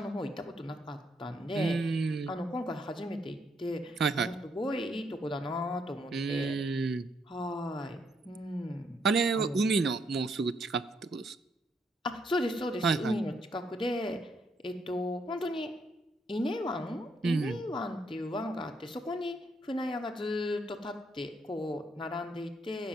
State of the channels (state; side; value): normal; both; correlation 0.74